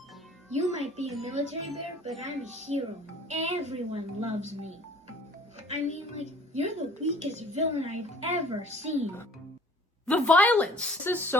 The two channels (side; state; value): both; normal; correlation 0.51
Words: You might be a military bear, but I'm a hero. Everyone loves me. I mean, like, you're the weakest villain I've ever seen. The violence! This is